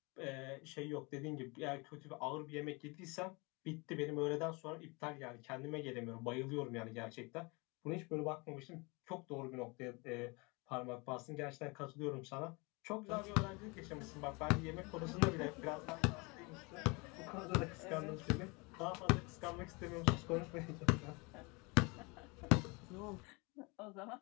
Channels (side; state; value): right; quieter; 28.1 dB